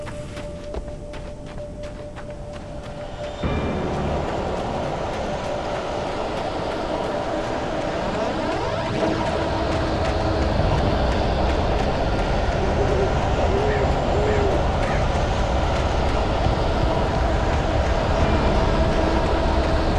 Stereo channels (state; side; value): identical; both; correlation 1.00